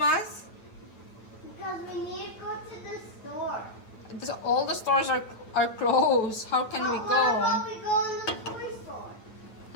Because we need to go to the store. All the stores are closed. How can we go? What about we go in the toy store?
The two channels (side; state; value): right; late; 8.9 ms